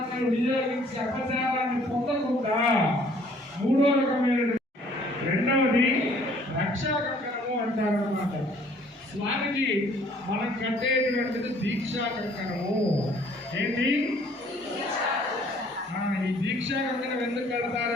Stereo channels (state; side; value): normal; both; correlation 0.58